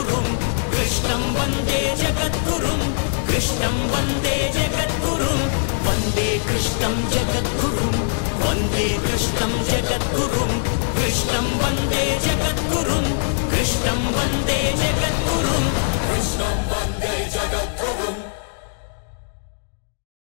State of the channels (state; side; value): silent; right; digital silence